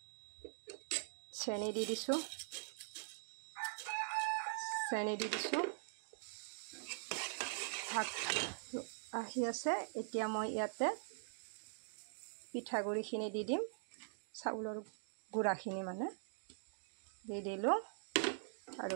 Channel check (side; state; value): left; silent; digital silence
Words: চেনি দি দিছোঁ, ভাত আহি আছে। এতিয়া মই ইয়াতে পিঠাগুড়িখিনি দি দিম, চাউলৰ গুড়াখিনি মানে দি দিলোঁ আৰু